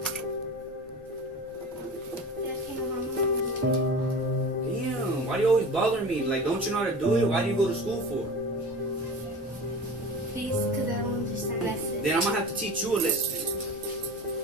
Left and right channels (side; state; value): both; normal; correlation 0.34